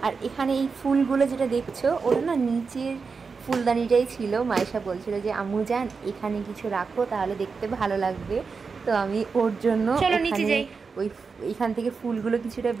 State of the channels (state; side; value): quieter; left; 5.0 dB